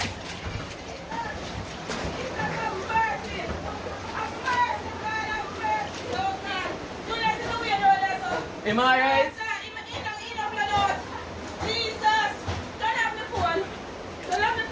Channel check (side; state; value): both; identical; correlation 1.00